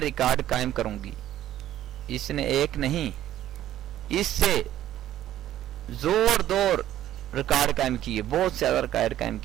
रिकॉर्ड कायम करूंगी। इसने एक नहीं, इससे जोरदार रिकॉर्ड कायम किए, बहुत ज्यादा रिकॉर्ड कायम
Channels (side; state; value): left; quieter; 12.6 dB